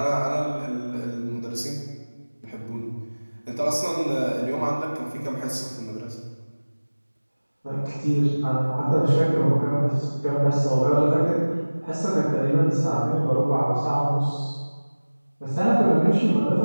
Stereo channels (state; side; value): inverted; both; correlation -1.00